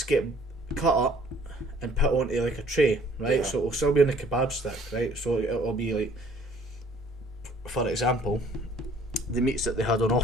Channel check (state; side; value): normal; both; correlation 0.57